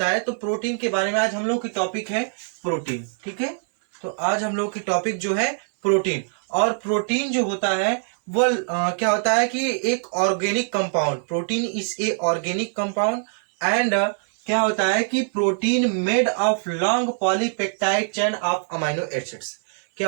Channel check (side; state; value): left; silent; 63 dB below the other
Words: है। तो प्रोटीन के बारे में आज हम लोग की टॉपिक है प्रोटीन। ठीक है, तो आज हम लोग की टॉपिक जो है प्रोटीन। और प्रोटीन जो होता है वो क्या होता है कि एक organic compound, protein is a organic compound and क्या होता है कि protein made of long polypeptide chain of amino acids.